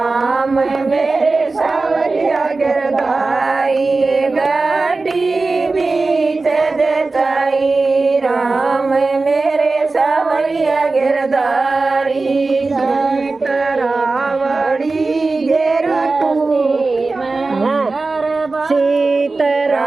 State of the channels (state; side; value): quieter; left; 3.6 dB